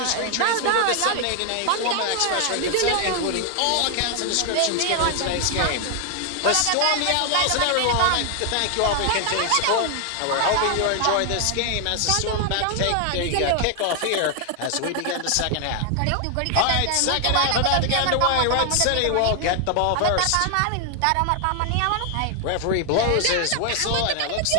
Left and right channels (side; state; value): both; different; correlation 0.00